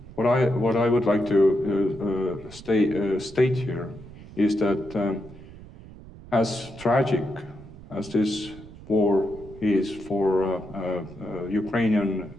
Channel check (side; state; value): right; noise; rumble, 17 dB below the sound